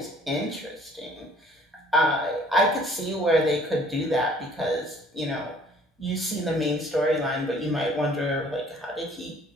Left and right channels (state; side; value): normal; both; correlation 0.56